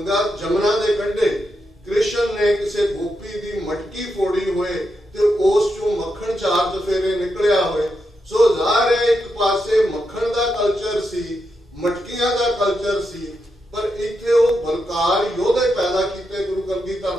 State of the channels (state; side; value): normal; both; correlation 0.85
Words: ਜਮਨਾ ਦੇ ਕੰਢੇ ਕ੍ਰਿਸ਼ਨ ਨੇ ਕਿਸੇ ਗੋਪੀ ਦੀ ਮਟਕੀ ਫੋੜੀ ਹੋਏ ਤੇ ਉਸ ਚੋਂ ਮੱਖਣ 4 ਚਫੇਰੇ ਨਿਕਲਿਆ ਹੋਏ। ਸੋ ਜ਼ਾਹਰ ਹੈ ਇੱਕ ਪਾਸੇ ਮੱਖਣ ਦਾ ਕਲਚਰ ਸੀ, ਮਟਕੀਆਂ ਦਾ ਕਲਚਰ ਸੀ, ਪਰ ਇੱਥੇ ਉਹ ਬਲਕਾਰ ਯੋਧੇ ਪੈਦਾ ਕੀਤੇ ਗੁਰੂ ਕਲਗੀਧਰ